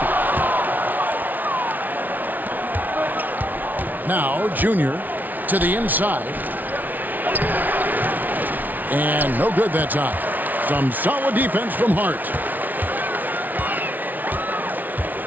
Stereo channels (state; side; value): late; left; 0.081 ms